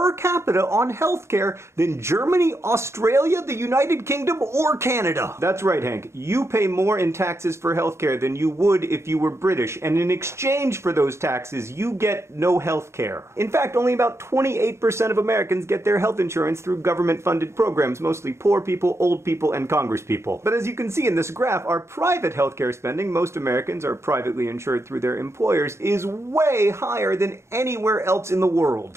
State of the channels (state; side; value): late; left; 0.13 ms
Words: capita on healthcare than Germany, Australia, the United Kingdom, or Canada. That's right, Hank. You pay more in taxes for healthcare than you would if you were British, and in exchange for those taxes, you get no healthcare. In fact, only about 28% of Americans get their health insurance through government-funded programs, mostly poor people, old people, and congresspeople. But as you can see in this graph, our private healthcare spending, most Americans are privately insured through their employers, is way higher than anywhere else in the